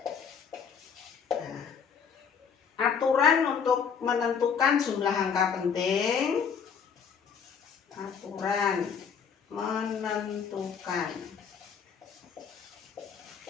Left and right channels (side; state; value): right; quieter; 6.7 dB